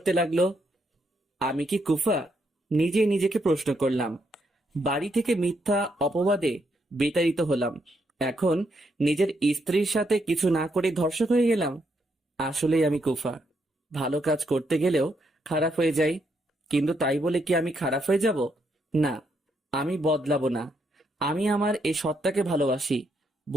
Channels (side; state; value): both; normal; correlation 0.77